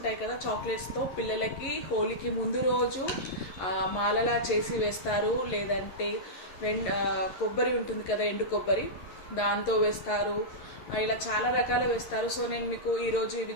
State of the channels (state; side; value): late; right; 11 ms